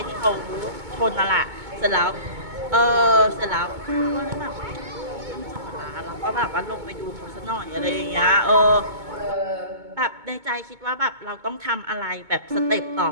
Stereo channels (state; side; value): late; left; 2.2 ms